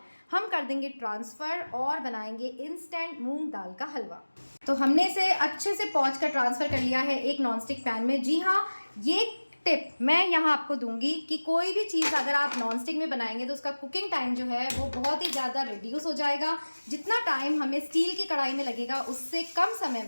हम कर देंगे ट्रांसफ़र और बनाएंगे इंस्टेंट मूंग दाल का हलवा। तो हमने इसे अच्छे से पोंछ कर ट्रांसफ़र कर लिया है एक नॉनस्टिक पैन में। जी हाँ, ये टिप मैं यहाँ आपको दूंगी कि कोई भी चीज़ अगर आप नॉनस्टिक में बनाएंगे तो उसका कुकिंग टाइम जो है वो बहुत ही ज़्यादा रिड्यूस हो जाएगा। जितना टाइम हमें स्टील की कढ़ाई में लगेगा उससे कम समय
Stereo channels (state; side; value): inverted; both; correlation -1.00